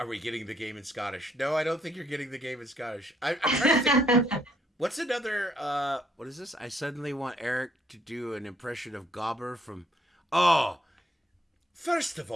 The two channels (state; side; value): normal; both; correlation 0.69